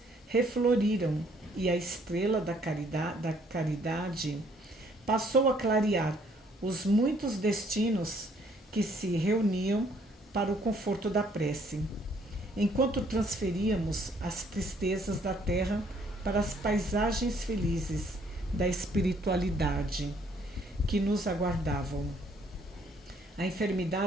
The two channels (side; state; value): both; normal; correlation 0.64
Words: refloriram e a estrela da caridade passou a clarear os muitos destinos que se reuniam para o conforto da prece, enquanto transferíamos as tristezas da terra para as paisagens felizes da espiritualidade que nos aguardavam. A